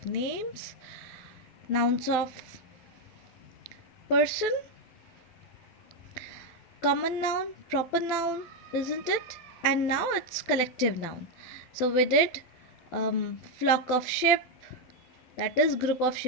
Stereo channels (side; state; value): right; late; 12 ms